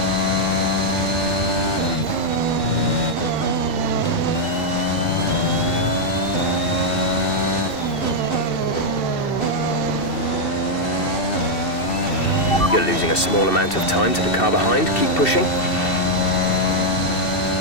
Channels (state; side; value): late; right; 2.7 ms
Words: You're losing a small amount of time to the car behind. Keep pushing.